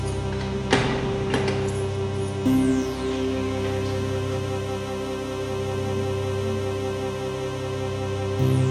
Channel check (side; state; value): both; identical; correlation 1.00